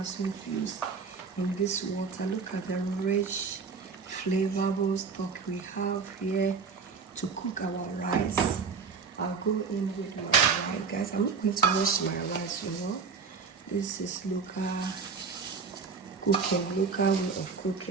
infused in this water. Look at the rich flavorful stock we have here to cook our rice. I'll go in with my rice, guys. I'm not going to wash my rice, you know. This is local way of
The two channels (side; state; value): left; quieter; 5.3 dB